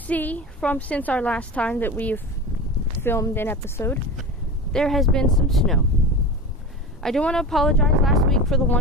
from since our last time that we've filmed an episode, there has been some snow. I do want to apologize last week for the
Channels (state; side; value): normal; both; correlation 0.28